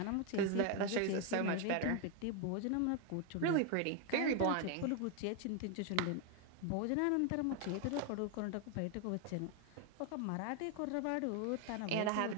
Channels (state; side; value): different; both; correlation 0.01